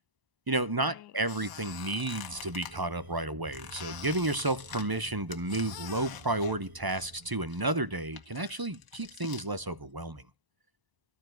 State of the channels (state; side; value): late; left; 1.0 ms